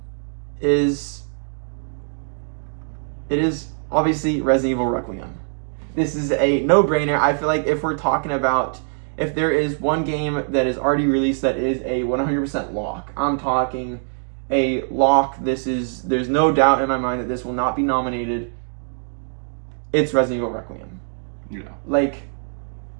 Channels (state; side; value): silent; left; digital silence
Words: is obviously Resident Evil Requiem. This is a no-brainer. I feel like if we're talking about if there is one game that is already released that is a 100% lock, I'm talking a lock. There's no doubt in my mind that this will not be nominated. It's Resident Evil Requiem. Yeah. Like,